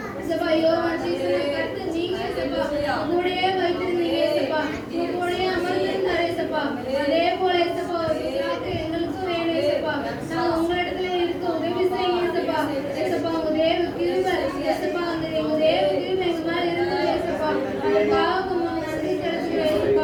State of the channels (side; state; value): both; identical; correlation 1.00